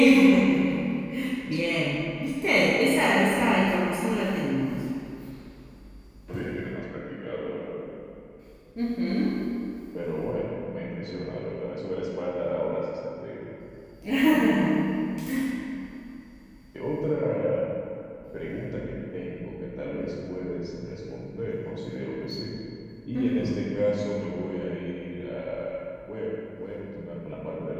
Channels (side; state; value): both; identical; correlation 1.00